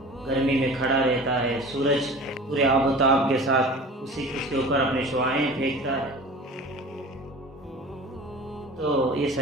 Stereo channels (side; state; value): both; normal; correlation 0.39